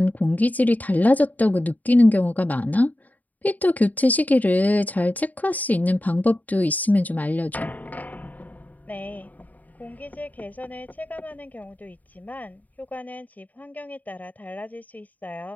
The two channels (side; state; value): right; late; 0.078 ms